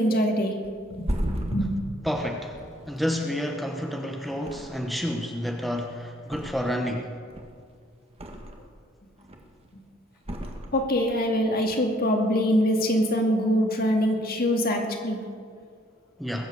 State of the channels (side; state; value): both; normal; correlation 0.65